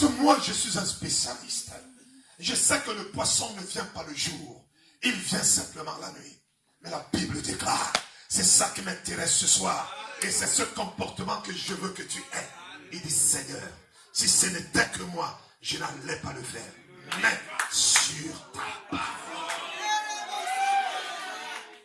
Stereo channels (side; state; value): both; identical; correlation 1.00